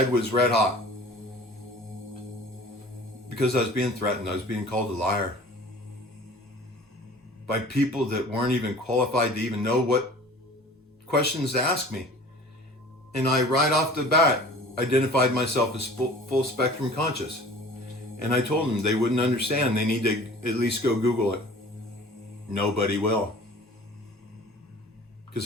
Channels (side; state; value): both; normal; correlation 0.45